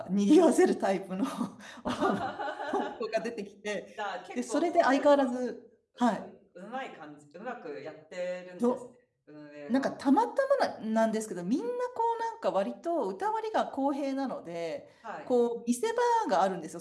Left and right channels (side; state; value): both; identical; correlation 1.00